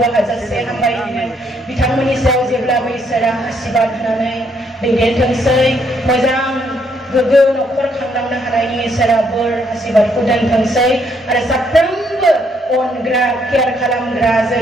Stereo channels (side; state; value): both; normal; correlation 0.71